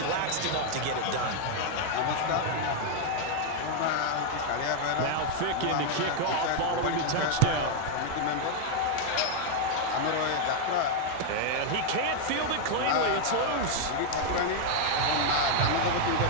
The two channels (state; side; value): different; both; correlation 0.00